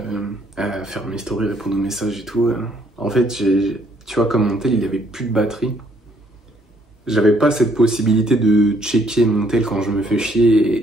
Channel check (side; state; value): both; normal; correlation 0.67